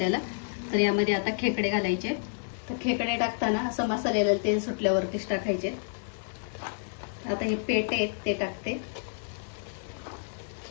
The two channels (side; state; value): right; silent; digital silence